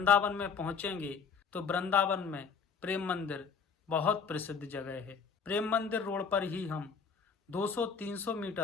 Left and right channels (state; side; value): quieter; right; 5.9 dB